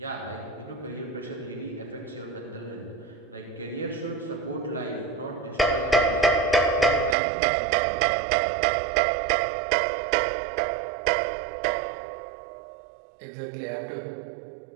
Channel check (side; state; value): left; drops out; at 7.2 s